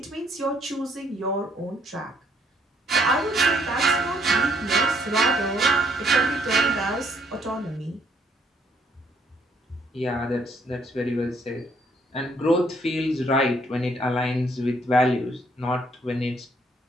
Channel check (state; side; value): normal; both; correlation 0.67